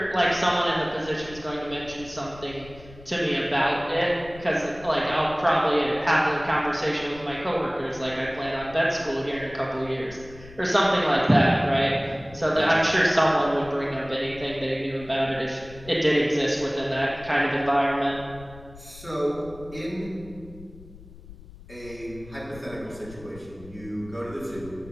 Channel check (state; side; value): noise; left; rumble, 19 dB below the sound